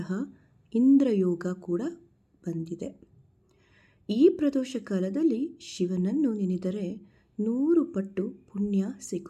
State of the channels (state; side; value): identical; both; correlation 1.00